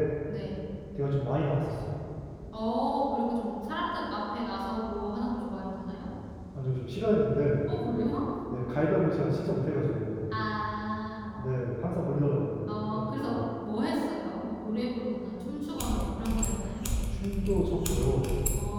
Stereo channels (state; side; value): identical; both; correlation 1.00